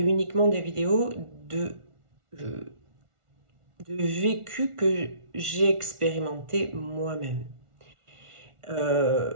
des vidéos de vécu que j'ai expérimenté moi-même.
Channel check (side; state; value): left; late; 1.4 ms